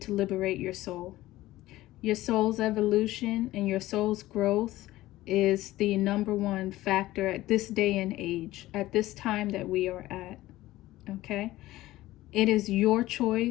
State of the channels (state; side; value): quieter; right; 16.5 dB